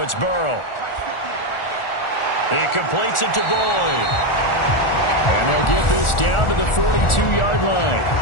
it's Burrow. He completes it to Boyd. And they'll get this down to the 42-yard line.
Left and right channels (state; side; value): late; right; 1.4 ms